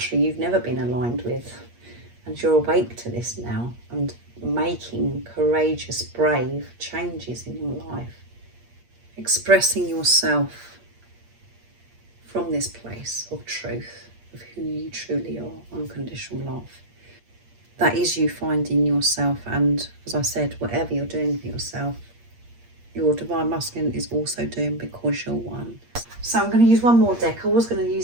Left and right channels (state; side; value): late; left; 8.5 ms